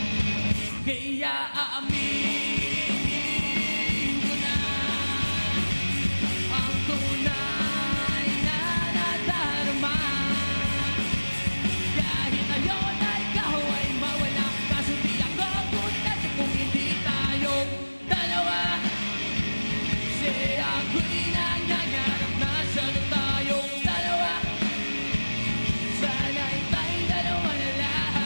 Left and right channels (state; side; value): inverted; both; correlation -1.00